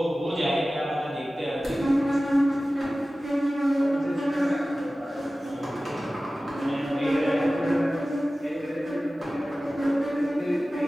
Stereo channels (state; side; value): normal; both; correlation 0.96